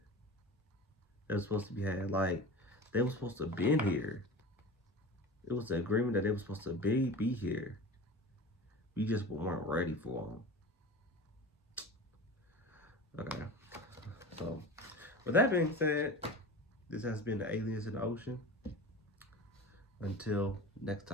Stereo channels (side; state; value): both; normal; correlation 0.33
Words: that was supposed to be had. Like they were supposed to been here. It was an agreement that they were supposed to be here. We just weren't ready for them. Okay. So, with that being said, this has been the Aliens in the Ocean. Until next